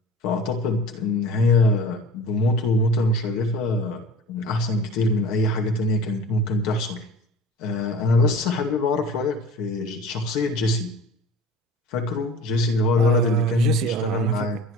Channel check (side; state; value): both; normal; correlation 0.41